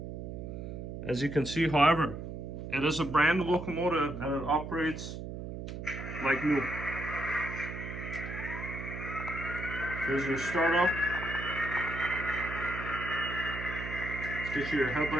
as you can see. However, it is a brand new locomotive and it operates like new. Here's your startup. Let's get you your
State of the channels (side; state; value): right; noise; hum, 7 dB below the sound